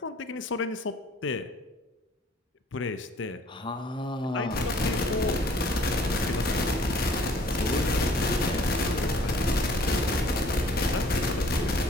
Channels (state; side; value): normal; both; correlation 0.56